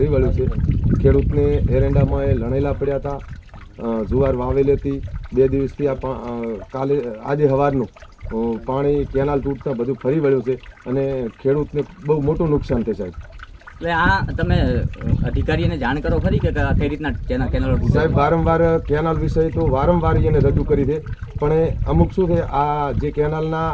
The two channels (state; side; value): identical; both; correlation 1.00